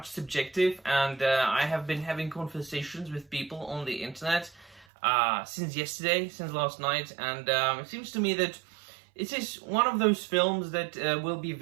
subjective and I have been having conversations with people on the internet since last night, and it seems to me that it is one of those films that will be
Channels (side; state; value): left; drops out; at 4.9 s